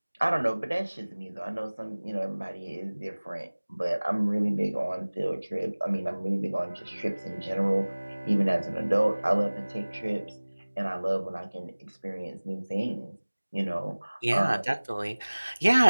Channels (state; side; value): inverted; both; correlation -1.00